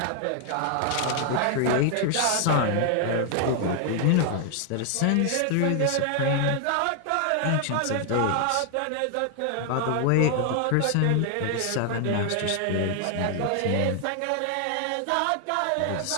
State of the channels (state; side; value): different; both; correlation 0.00